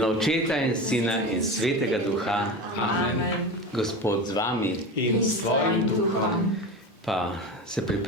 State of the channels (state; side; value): normal; both; correlation 0.26